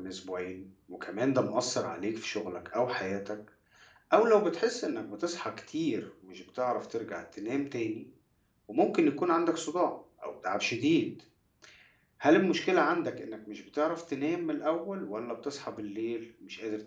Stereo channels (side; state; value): both; identical; correlation 1.00